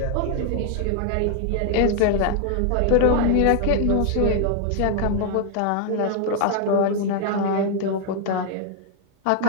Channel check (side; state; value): both; different; correlation 0.00